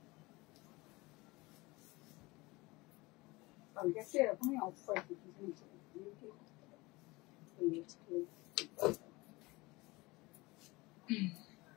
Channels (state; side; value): quieter; right; 22.6 dB